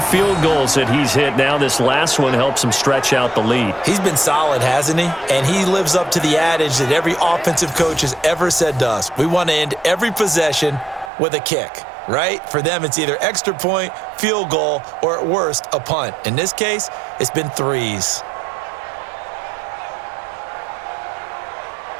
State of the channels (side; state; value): left; drops out; at 11.1 s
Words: goals that he's hit now. This last one helps him stretch out the lead. He's been solid, hasn't he? And he lives up to the adage that every offensive coach has ever said to us. We want to end every possession with a kick, right? For them, it's either extra point, field goal, or at worst, a punt. In this case, it's been 3s.